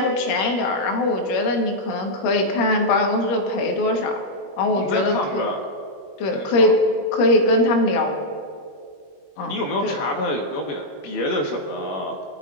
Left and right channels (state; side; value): late; right; 21 ms